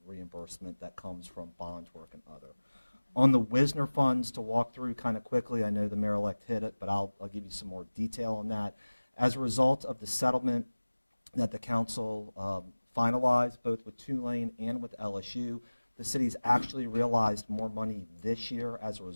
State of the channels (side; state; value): both; inverted; correlation -1.00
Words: reimbursement that comes from bond work and other. On the Wisner funds, to walk through kind of quickly, I know the mayor-elect hit it, but I'll give you some more detail on that. As a result of the settlement that the council finalized, both with Tulane and with LSU, the city's actually realized more money this year as a